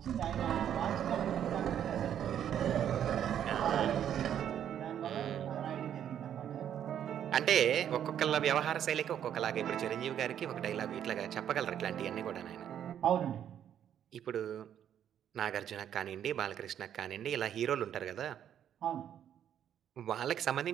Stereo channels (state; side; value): quieter; left; 9.8 dB